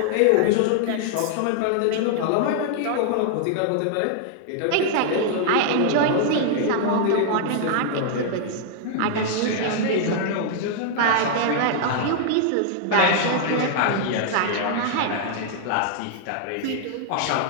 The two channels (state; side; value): different; both; correlation -0.01